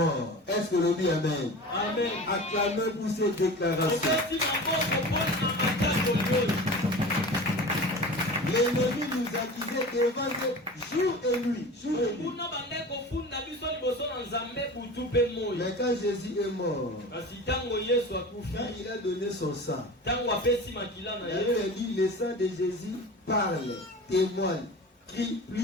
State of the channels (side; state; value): both; normal; correlation 0.35